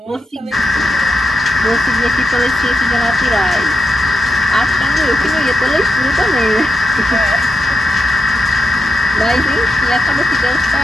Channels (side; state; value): both; normal; correlation 0.85